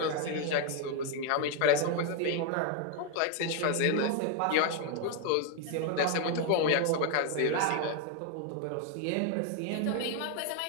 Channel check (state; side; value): different; both; correlation 0.01